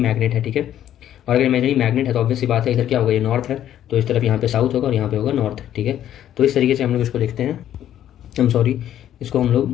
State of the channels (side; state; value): right; quieter; 11.3 dB